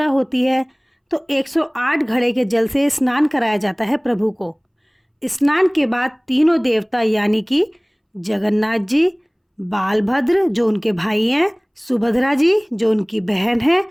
होती है तो 108 घड़े के जल से स्नान कराया जाता है प्रभु को। स्नान के बाद तीनों देवता यानी कि जगन्नाथ जी, बालभद्र जो उनके भाई हैं, सुभद्रा जी जो उनकी बहन है,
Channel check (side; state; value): both; identical; correlation 1.00